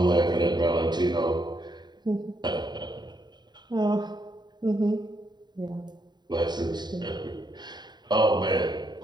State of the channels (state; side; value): late; left; 0.21 ms